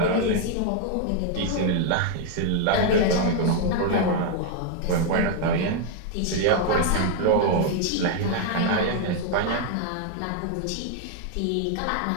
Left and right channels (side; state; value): both; different; correlation 0.00